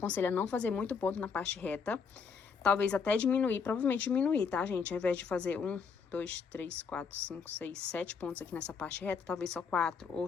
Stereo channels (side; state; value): right; quieter; 5.8 dB